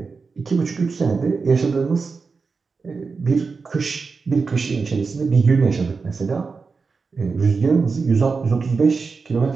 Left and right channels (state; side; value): quieter; left; 4.7 dB